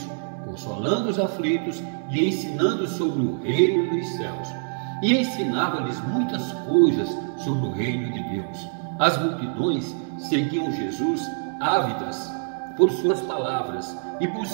consolando os aflitos e ensinando sobre o reino dos céus. E ensinava-lhes muitas coisas sobre o reino de Deus. As multidões seguiam Jesus ávidas por suas palavras e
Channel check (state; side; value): silent; left; digital silence